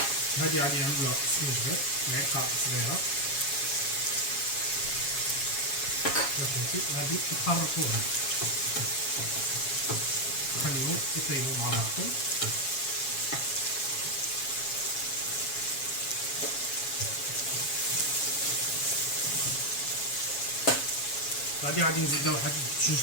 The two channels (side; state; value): right; late; 7.3 ms